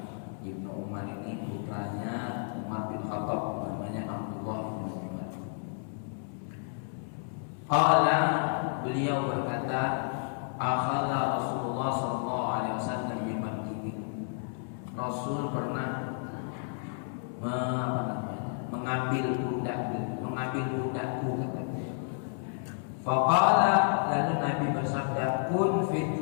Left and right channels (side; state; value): right; silent; 57 dB below the other